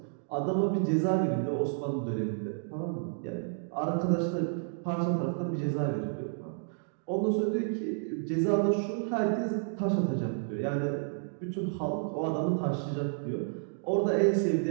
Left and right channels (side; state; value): left; silent; digital silence